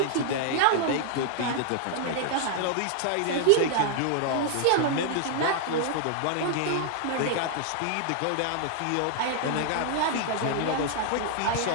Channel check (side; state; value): both; different; correlation 0.00